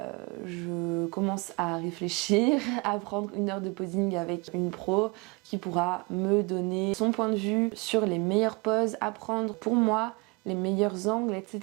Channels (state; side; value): quieter; left; 28.1 dB